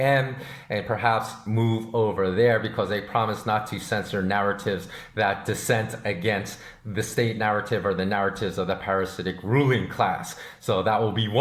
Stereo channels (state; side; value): identical; both; correlation 1.00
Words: and perhaps move over there, because they promise not to censor narratives that dissent against the state narrative or the narratives of the parasitic ruling class. So that will be